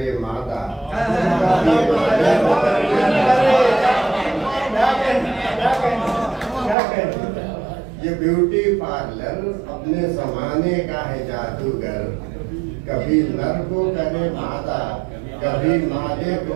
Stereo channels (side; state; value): left; drops out; at 6.8 s